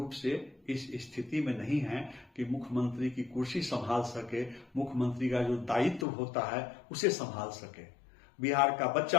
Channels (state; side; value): drops out; right; at 6.1 s